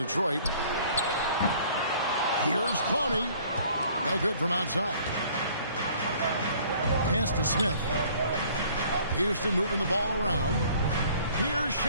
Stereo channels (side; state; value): both; inverted; correlation -0.55